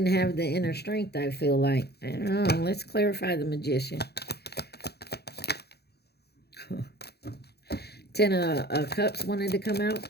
have the inner strength, I feel like. I don't know. Let's clarify the Magician. 10 of Cups wanted to come out.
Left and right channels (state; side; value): late; right; 0.47 ms